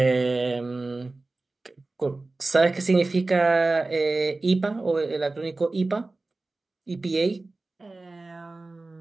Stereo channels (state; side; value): quieter; left; 3.3 dB